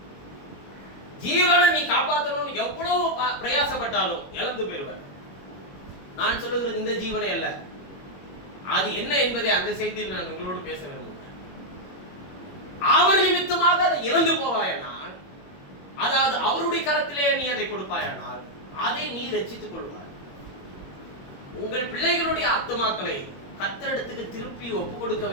ஜீவனை நீ காப்பாற்றணும்னு எவ்வளவு பிரயாசப்பட்டாலும் இழந்து போயிடுவார். நான் சொல்லுகிறது இந்த ஜீவனை அல்ல, அது என்ன என்பதை அந்த செய்தியில் நான் உங்களோடு பேச விரும்புகிறேன். அவர் நிமித்தமாக அதை இழந்து போவாயானால், அதாவது அவருடைய கரத்திலே நீ அதை கொடுப்பாயானால் அதை நீ ரட்சித்துக் கொள்வாய். உங்கள் பிள்ளைகளுடைய ஆத்துமாக்களை கர்த்தரிடத்துக்கு திருப்பி ஒப்பு கொடுக்க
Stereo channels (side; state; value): right; late; 21 ms